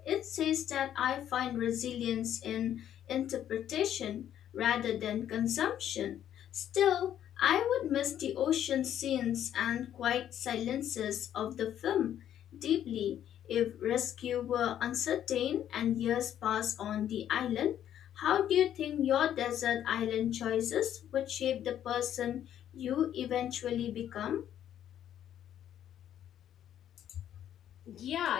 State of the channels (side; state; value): right; quieter; 10.6 dB